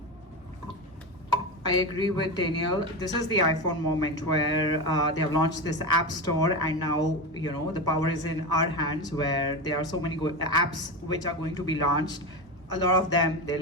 I agree with Daniel. This is the iPhone moment where they have launched this app store, and now the power is in our hands. Where there are so many apps which are going to be launched. A lot of them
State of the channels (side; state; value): both; normal; correlation 0.19